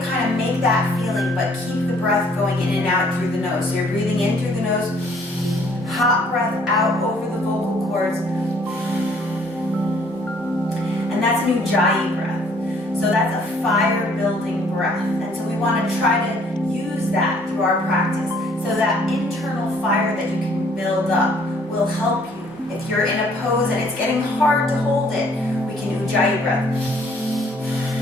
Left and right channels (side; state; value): both; normal; correlation 0.61